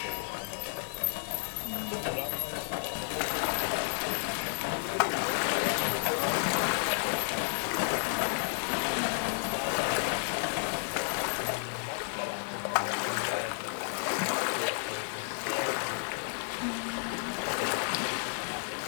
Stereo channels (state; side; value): silent; right; digital silence